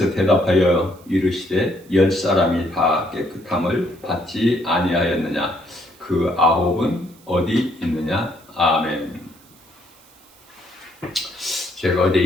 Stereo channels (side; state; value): right; noise; hiss, 28 dB below the sound